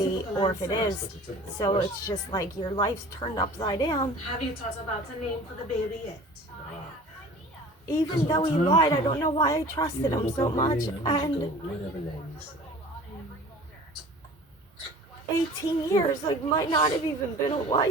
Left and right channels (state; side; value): normal; both; correlation 0.43